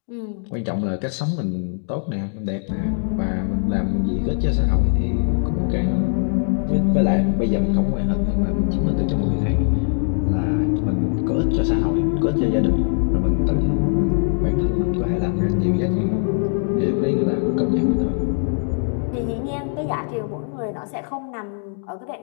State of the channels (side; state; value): right; silent; digital silence